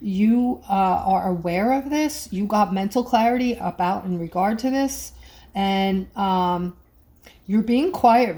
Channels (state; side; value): identical; both; correlation 1.00